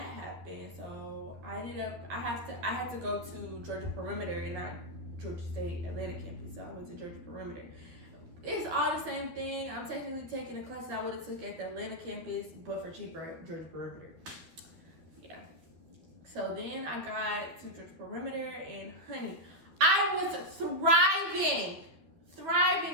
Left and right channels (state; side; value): late; left; 12 ms